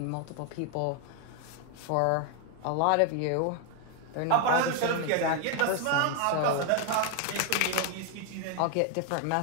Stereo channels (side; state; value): both; different; correlation 0.01